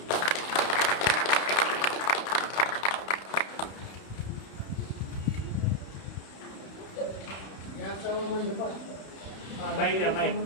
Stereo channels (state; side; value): late; right; 31 ms